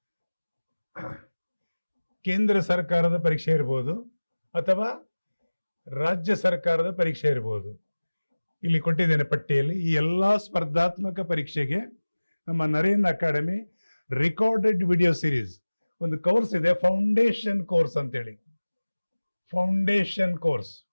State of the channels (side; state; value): both; inverted; correlation -1.00